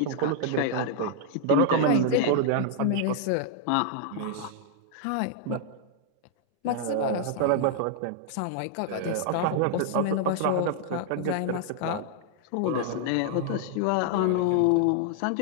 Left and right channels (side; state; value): both; different; correlation -0.01